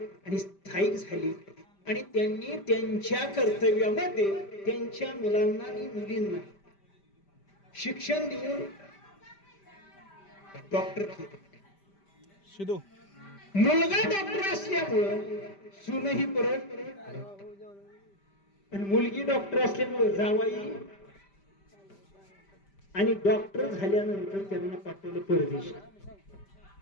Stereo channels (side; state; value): right; late; 5.1 ms